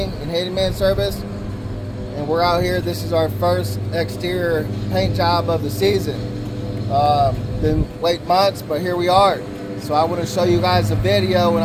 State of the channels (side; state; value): both; identical; correlation 1.00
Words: and Handyman Service, and we're out here. This is our first exterior paint job of the season. Been late months, but here we are. So I want to show you guys a video, and